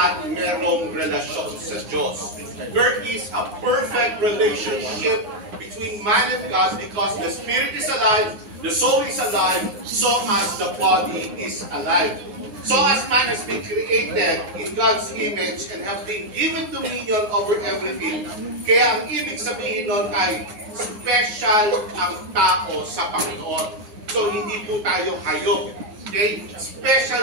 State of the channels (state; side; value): late; left; 9.7 ms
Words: merong relasyon sa Diyos. There is a perfect relationship between man and God because the spirit is alive, the soul is alive, so as the body is alive. So as man has been created in God's image and have been given dominion over everything, kaya ang ibig sabihin nun ay special ang tao sa Panginoon. So hindi po tayo hayop. Okay?